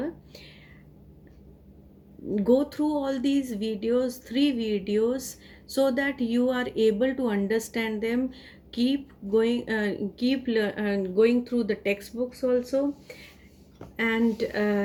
Go through all these videos, three videos, so that you are able to understand them. Keep going, going through the textbooks also. And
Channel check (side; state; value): both; identical; correlation 1.00